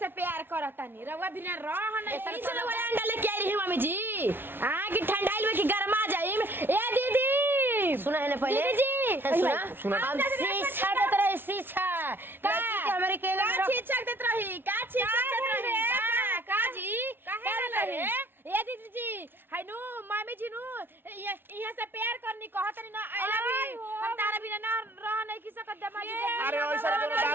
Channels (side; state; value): left; late; 0.10 ms